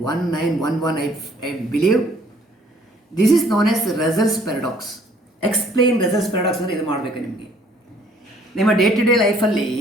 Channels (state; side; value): normal; both; correlation 0.59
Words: I believe. This is known as Russell's paradox. Explain Russell's paradox ಅಂದರೆ ಇದು ಮಾಡಬೇಕು ನಿಮಗೆ. ನಿಮ್ಮ day to day ಲೈಫಲ್ಲಿ